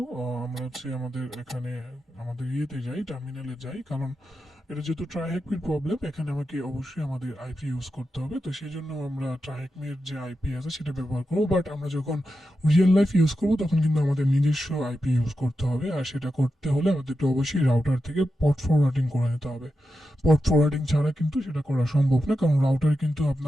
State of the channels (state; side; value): normal; both; correlation 0.89